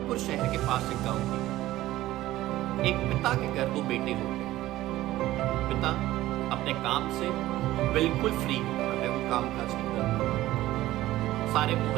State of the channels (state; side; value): quieter; left; 15.7 dB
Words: शहर के पास एक गांव की। एक पिता के घर दो बेटे होते हैं। पिता अपने काम से बिल्कुल फ्री होता है, वो काम काज नहीं करता। सारे